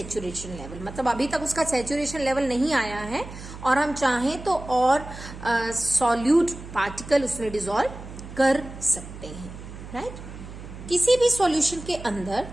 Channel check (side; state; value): right; noise; hum, 13 dB below the sound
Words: level, मतलब अभी तक उसका saturation level नहीं आया है और हम चाहें तो और solute particle उसमें dissolve कर सकते हैं, right? किसी भी solution के अंदर